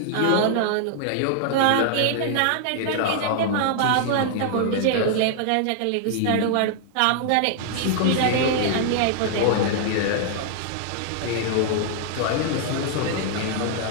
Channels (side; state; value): both; different; correlation 0.00